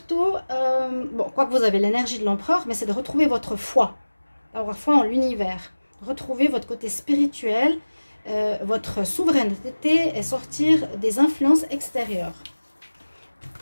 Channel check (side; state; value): both; inverted; correlation -1.00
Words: bon, quoique vous avez l'énergie de l'empereur, mais c'est de retrouver votre foi. Avoir foi en l'univers. Retrouver votre côté spirituel, votre souveraineté et sortir des influences extérieures.